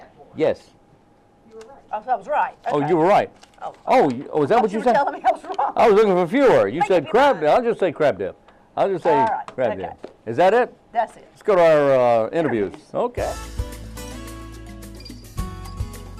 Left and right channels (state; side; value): identical; both; correlation 1.00